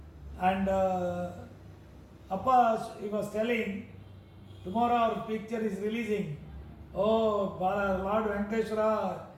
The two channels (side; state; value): both; identical; correlation 1.00